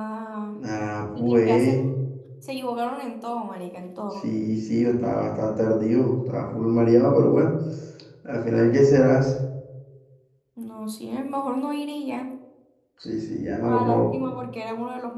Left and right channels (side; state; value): both; identical; correlation 1.00